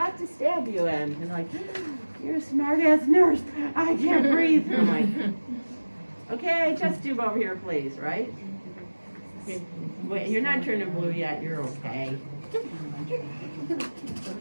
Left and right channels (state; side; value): inverted; both; correlation -1.00